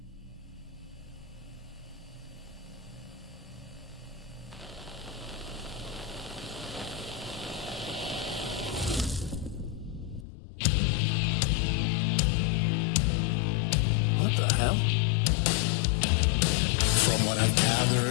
What the hell? From what I've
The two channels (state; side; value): drops out; right; at 10.2 s